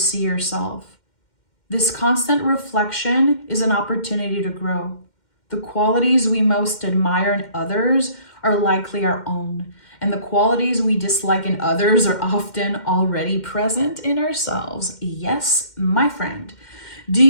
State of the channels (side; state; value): right; late; 2.1 ms